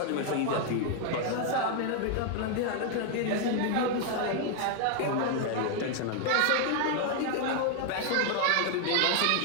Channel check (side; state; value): both; different; correlation 0.00